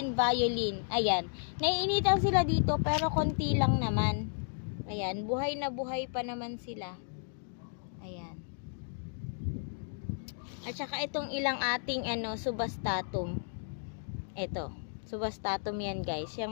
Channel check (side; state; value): right; silent; digital silence